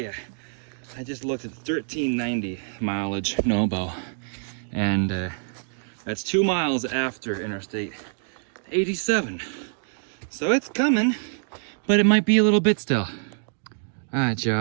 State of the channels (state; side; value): silent; left; digital silence